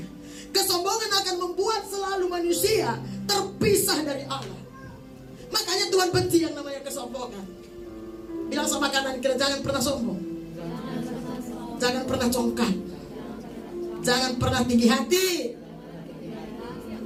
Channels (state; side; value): identical; both; correlation 1.00